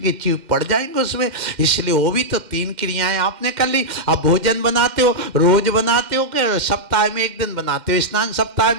जीभ पड़ जाएंगे उसमें। इसलिए वो भी तो 3 क्रियाएं आपने कर ली। अब भोजन बनाते हो, रोज बनाते हो कि सप्ताह में 1 दिन बनाते हो? स्नान सप्ताह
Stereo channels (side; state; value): left; late; 2.1 ms